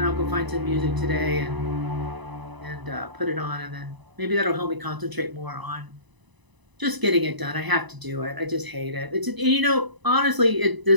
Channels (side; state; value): left; late; 1.0 ms